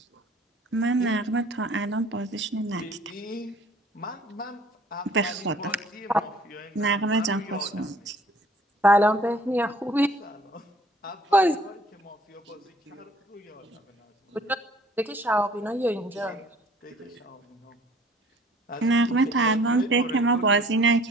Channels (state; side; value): normal; both; correlation 0.54